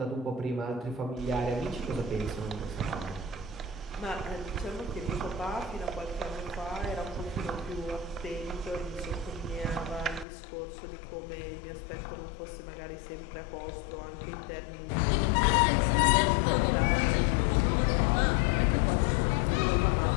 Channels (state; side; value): drops out; right; at 10.2 s